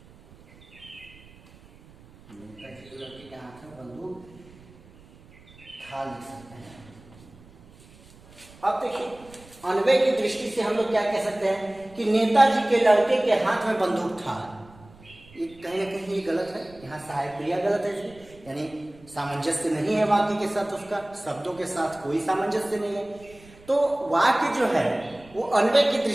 नेताजी के लड़के के हाथ में बंदूक था, लिख सकते हैं। अब देखिए, अन्वय की दृष्टि से हम लोग क्या कह सकते हैं कि नेताजी के लड़के के हाथ में बंदूक था। ये कहीं ना कहीं ये गलत है, यहाँ सहायक क्रिया गलत है, यानी सामंजस्य नहीं है वाक्य के साथ, उसका शब्दों के साथ कोई सामंजस्य नहीं है। तो वाक्य जो है वो अन्वय की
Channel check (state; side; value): noise; right; rumble, 24 dB below the sound